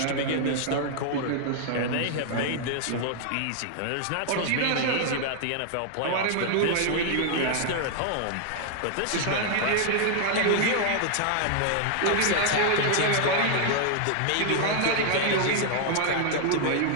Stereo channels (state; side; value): different; both; correlation 0.00